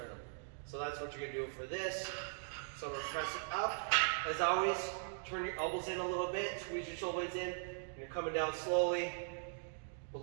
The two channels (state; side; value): silent; left; digital silence